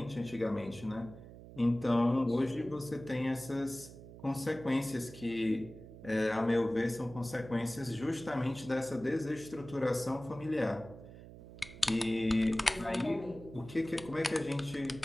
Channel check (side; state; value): right; noise; hum, 16 dB below the sound